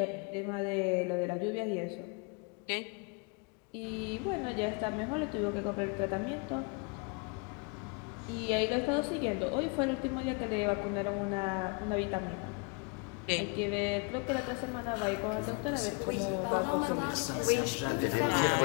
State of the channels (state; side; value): quieter; right; 32.7 dB